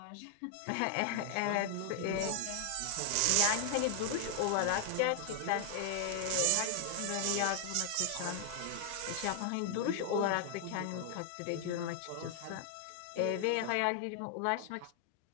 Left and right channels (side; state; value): both; different; correlation 0.00